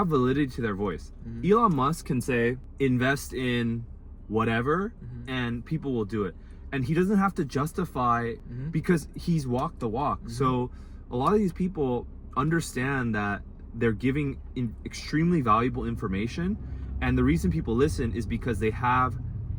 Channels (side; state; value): both; identical; correlation 1.00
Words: validity to their voice. Elon Musk can say, invest in whatever, and people will do it. And he doesn't have to justify because he's walked the walk. So a lot of these people understand that they're giving extremely valuable information. And the reason people listen is because they have